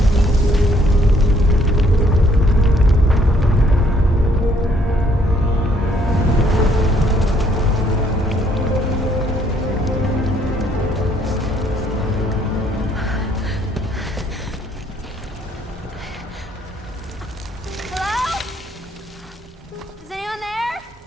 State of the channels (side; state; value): both; normal; correlation 0.66